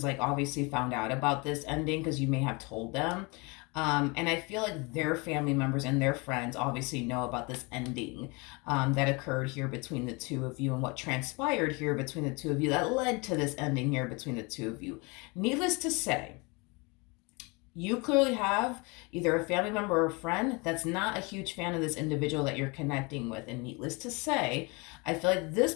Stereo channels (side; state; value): right; quieter; 28.4 dB